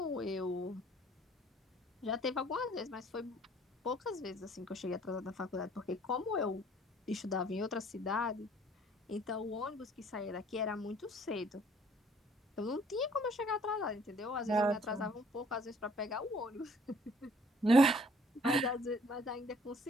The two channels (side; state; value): both; normal; correlation 0.58